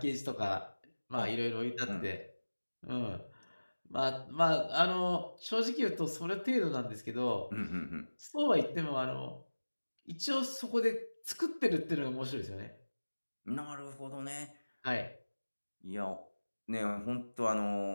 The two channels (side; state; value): both; inverted; correlation -1.00